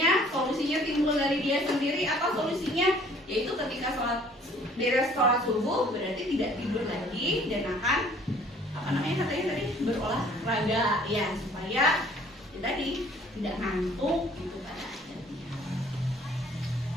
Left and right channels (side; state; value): both; normal; correlation 0.56